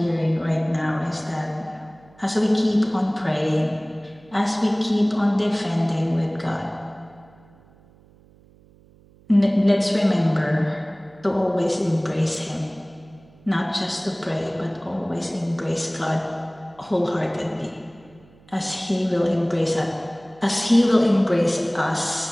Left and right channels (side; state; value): right; noise; hum, 27 dB below the sound